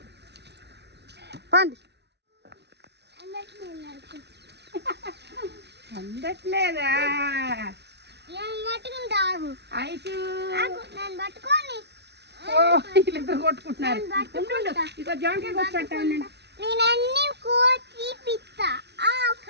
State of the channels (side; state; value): left; late; 0.49 ms